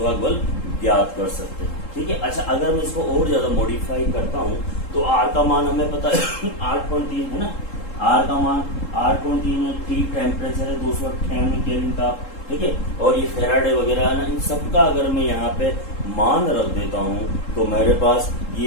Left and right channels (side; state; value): right; late; 3.7 ms